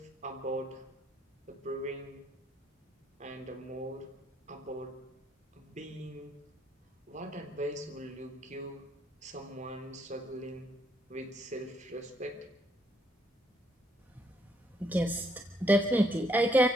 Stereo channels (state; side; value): normal; both; correlation 0.70